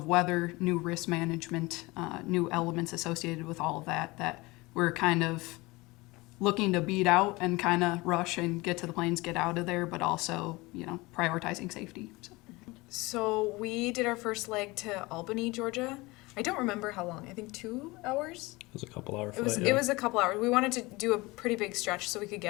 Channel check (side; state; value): right; quieter; 22.7 dB